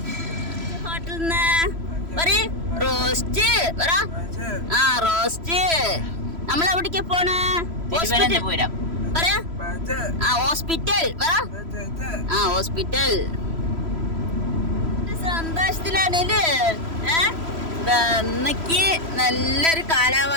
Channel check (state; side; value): late; left; 3.0 ms